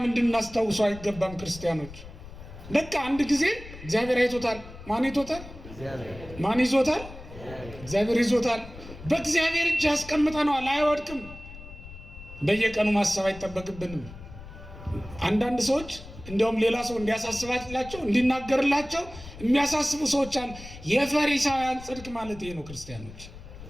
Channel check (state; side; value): noise; left; rumble, 15 dB below the sound